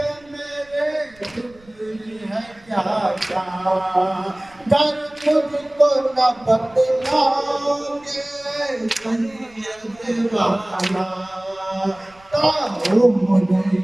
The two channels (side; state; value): right; noise; rumble, 28 dB below the sound